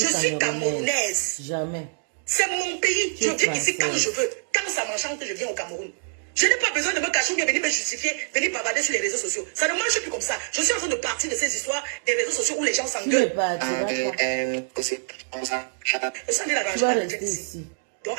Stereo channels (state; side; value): silent; left; digital silence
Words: suis camerounaise. Jamais. C'est mon pays. Je viens ici quand je veux. Quand ça m'enchante, je viens au Cameroun. Je n'ai pas besoin de me cacher ou bien venir me justifier, venir bavarder sur les réseaux sociaux. Ça ne marche plus comme ça. Je suis en train de partir de ces histoires des réseaux sociaux où les gens s'engueulent. Je suis en train d'arranger ma retraite ici. Donc